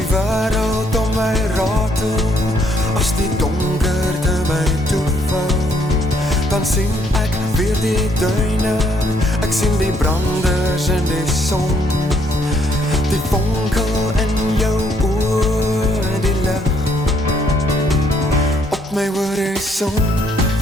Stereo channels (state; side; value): normal; both; correlation 0.69